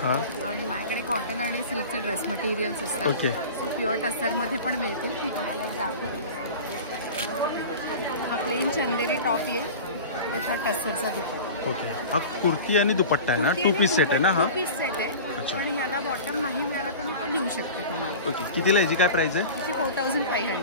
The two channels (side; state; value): both; inverted; correlation -0.35